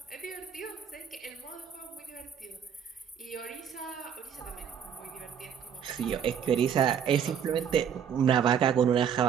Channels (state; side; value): quieter; left; 8.0 dB